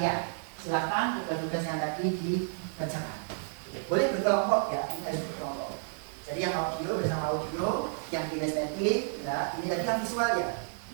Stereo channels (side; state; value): left; silent; digital silence